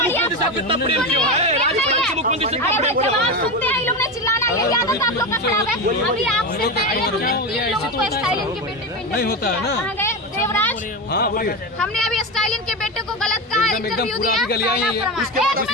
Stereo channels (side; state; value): both; normal; correlation 0.18